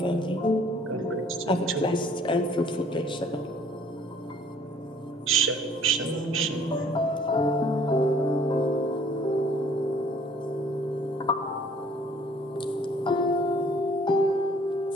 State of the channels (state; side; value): normal; both; correlation 0.57